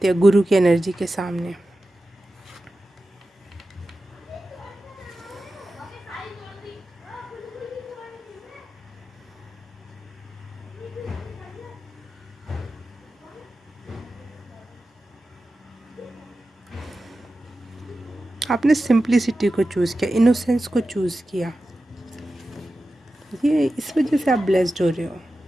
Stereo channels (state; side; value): normal; both; correlation 0.93